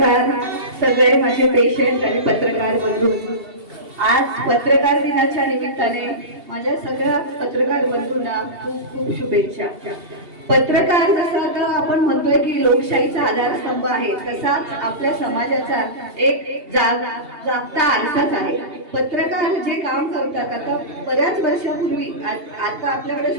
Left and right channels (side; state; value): left; late; 2.8 ms